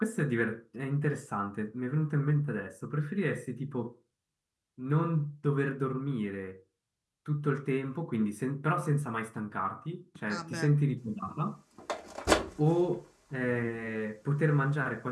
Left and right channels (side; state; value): both; identical; correlation 1.00